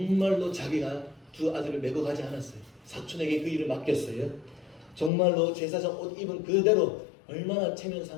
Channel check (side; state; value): right; drops out; at 5.1 s